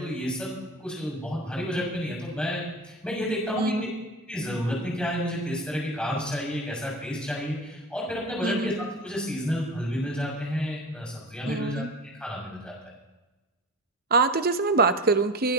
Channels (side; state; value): both; normal; correlation 0.32